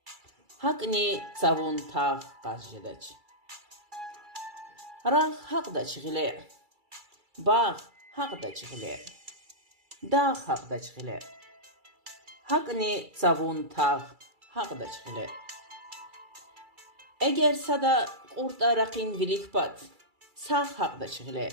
hakni savun tağ qazjedaç. Rah haqda çığile, bağ haqda çığile, dağ haqda çığile, hakni savun tağ haqda çığile. Eğer sada qurta raqin vilikpat, sağ haqda çığile,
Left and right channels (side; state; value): left; late; 2.3 ms